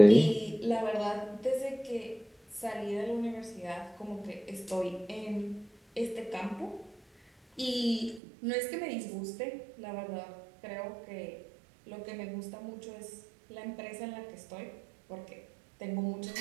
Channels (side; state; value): left; drops out; at 8.2 s